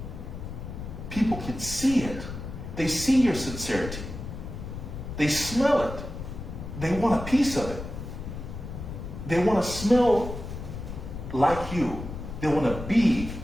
People can see it. They see your sincerity. They smell it. They want a piece of it. They want to smell like you. They want to be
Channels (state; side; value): noise; left; rumble, 8 dB below the sound